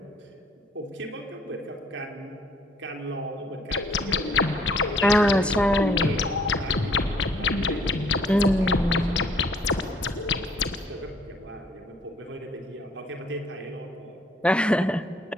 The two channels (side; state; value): both; normal; correlation 0.61